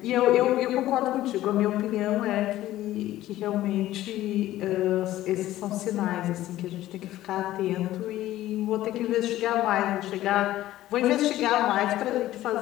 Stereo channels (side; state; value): right; quieter; 14.6 dB